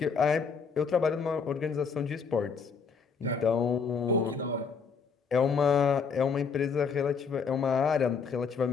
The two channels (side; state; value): right; quieter; 5.7 dB